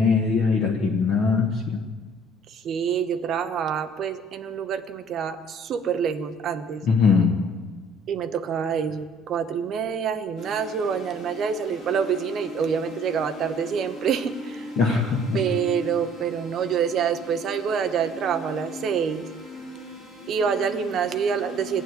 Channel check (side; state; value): both; normal; correlation 0.56